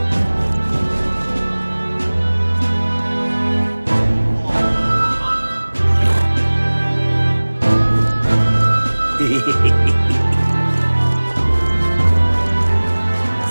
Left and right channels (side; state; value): both; inverted; correlation -1.00